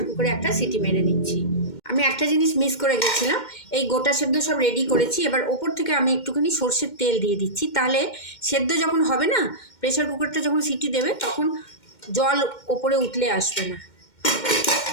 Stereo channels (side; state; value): right; late; 2.1 ms